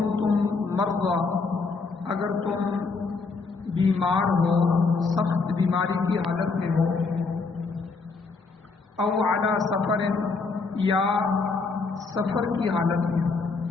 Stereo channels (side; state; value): right; quieter; 4.3 dB